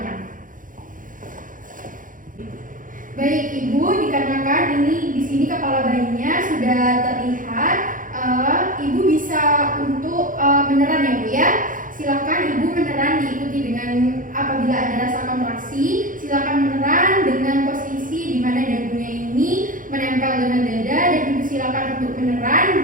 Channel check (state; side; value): late; left; 0.39 ms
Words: sini kepala bayinya sudah terlihat. Ibu bisa untuk meneran ya Bu ya. Silakan Ibu meneran diikuti dengan apabila ada rasa kontraksi, silakan meneran dengan posisi di mana dagunya ini menempel dengan dada, dan Ibu silakan untuk